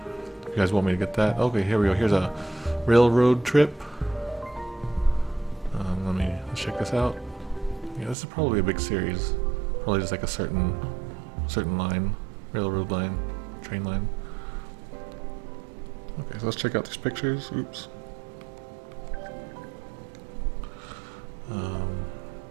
If you guys want me to get that. Okay, here we go. Here's a railroad trip. Let's check this out. Yeah, this is probably a big series. Probably just like a certain line, railroad line, train line. Okay, so let's check out these pictures. Oops.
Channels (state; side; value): drops out; left; at 8.2 s